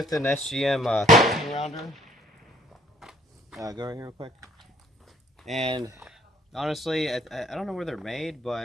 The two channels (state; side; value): normal; both; correlation 0.60